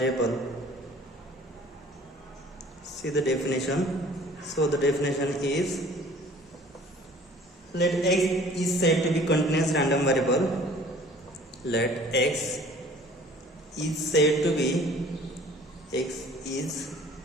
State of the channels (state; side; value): normal; both; correlation 0.51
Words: See the definition. So the definition is, let x is said to be continuous random variable. Let x is said to be